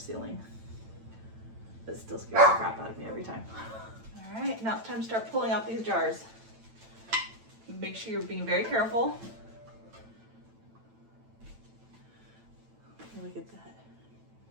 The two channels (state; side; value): late; left; 9.0 ms